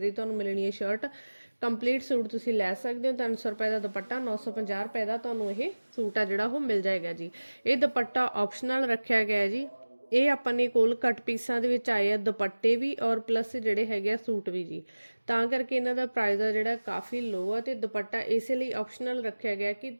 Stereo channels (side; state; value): both; inverted; correlation -1.00